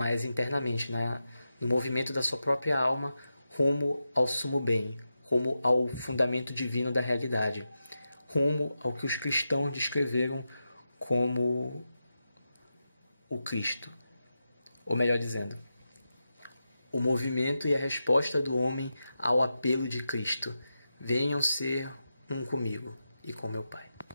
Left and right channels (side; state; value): both; inverted; correlation -0.90